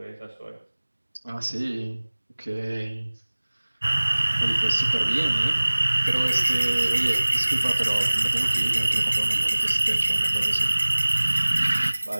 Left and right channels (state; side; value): inverted; both; correlation -1.00